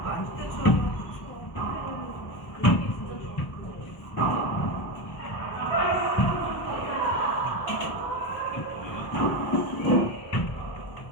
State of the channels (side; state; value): right; late; 1.1 ms